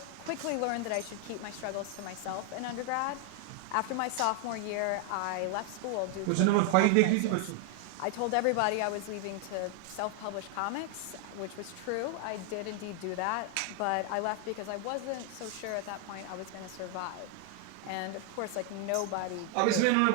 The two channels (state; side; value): different; both; correlation 0.00